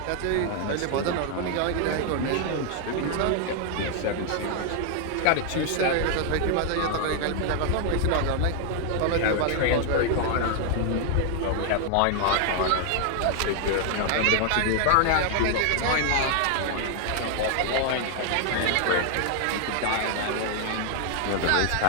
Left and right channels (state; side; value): different; both; correlation 0.00